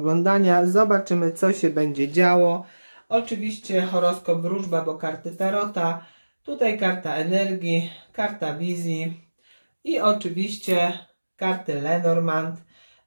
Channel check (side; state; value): both; inverted; correlation -1.00